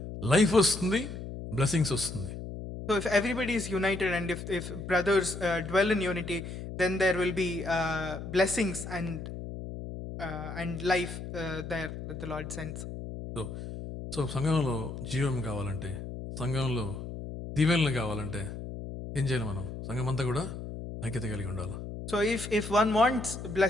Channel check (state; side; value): noise; left; hum, 8 dB below the sound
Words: లైఫ్ వస్తుంది, బ్లెస్సింగ్స్ వస్తుంది. So if everybody is united and if brothers dwell in unity, then there will be blessings and life there that the Lord sends. So సంఘంలో జీవం కావాలంటే, సంఘంలో దీవెనలు కావాలంటే ఏం చేయాలి? మనం సంఘం అంతా కూడా ఐక్యత కలిగి ఉండాలి. So if one wants